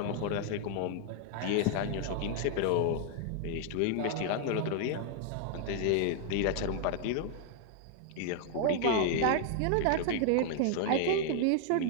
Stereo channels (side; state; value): both; different; correlation 0.00